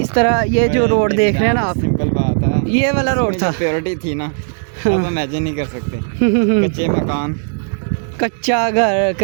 इस तरह ये जो रोड देख रहे हैं ना आप, सिंपल बात है, ये वाला रोड था। प्योरिटी थी ना, अब इमेजिन नहीं कर सकते। कच्चे मकान, कच्चा घर,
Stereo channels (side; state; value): left; silent; digital silence